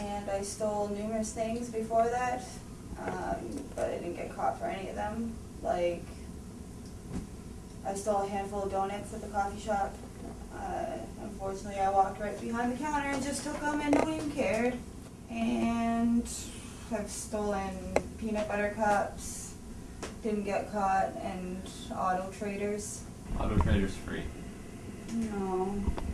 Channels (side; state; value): both; identical; correlation 1.00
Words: I stole numerous things before that. But I didn't get caught for any of them. Like, I stole a handful of donuts at the coffee shop. Unfortunately, I walked right behind the counter and just took them and no one even cared. And I've stolen peanut butter cups, didn't get caught, and Auto Traders. Auto Trader's free. No,